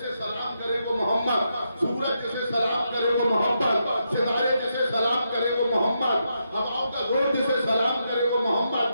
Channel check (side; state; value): both; inverted; correlation -0.82